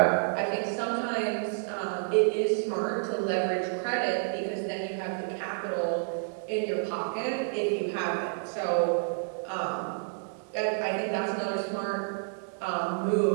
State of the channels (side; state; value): left; silent; digital silence